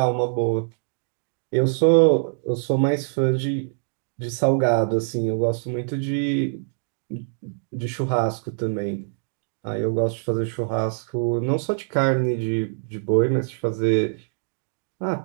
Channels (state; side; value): silent; left; digital silence